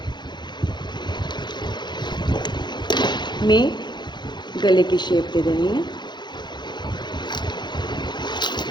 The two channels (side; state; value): right; late; 0.21 ms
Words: में। गले की शेप दे देनी है।